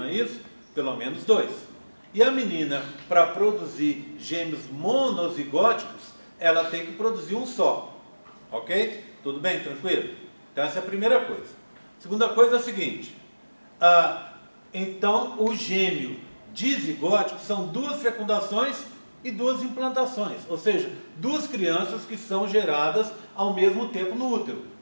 é isso? Pelo menos dois. E a menina, para produzir gêmeos monozigóticos, ela tem que produzir um só. Ok? Tudo bem? Tranquilo? Então, essa é a primeira coisa. Segunda coisa é a seguinte. Então, o gêmeo dizigótico são duas fecundações e duas implantações. Ou seja, duas crianças que são geradas ao mesmo tempo no útero.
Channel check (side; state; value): both; inverted; correlation -1.00